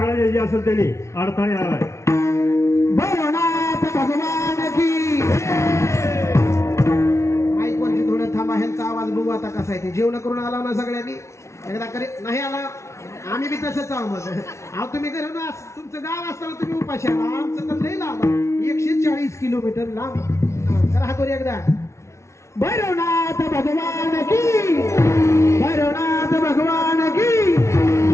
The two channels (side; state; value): right; late; 0.13 ms